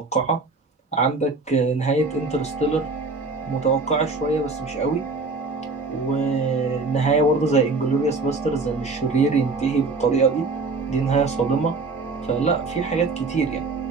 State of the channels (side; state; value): left; quieter; 3.8 dB